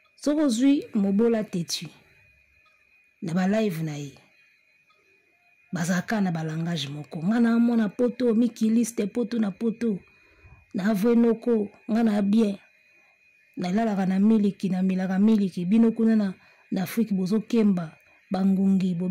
Sorozui mobola tetu. Na ba live na ye. Bazaka na ba langage moko. Ngana mona poto mikiliste poto na poto. Na avwenoko ngana bien. Na lalaka na miliki na milaka miliki bino kuna na Afrique bozo kemba bangungi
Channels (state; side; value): identical; both; correlation 1.00